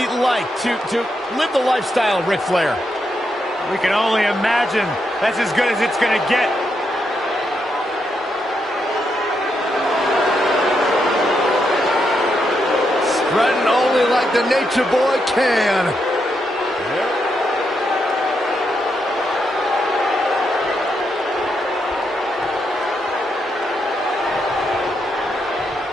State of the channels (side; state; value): both; normal; correlation 0.81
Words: like to live the lifestyle of Ric Flair. We can only imagine. That's as good as it's going to get. Strutting only like the Nature Boy can.